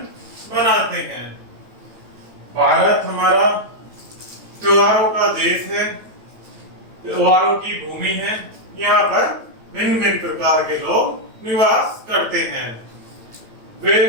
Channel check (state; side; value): late; left; 9.0 ms